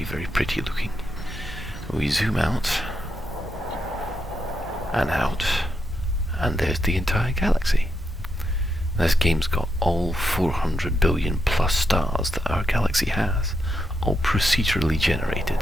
very pretty looking. We zoom out, and there's the entire galaxy. This game's got all 400 billion plus stars that our galaxy has, all procedurally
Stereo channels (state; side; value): normal; both; correlation 0.83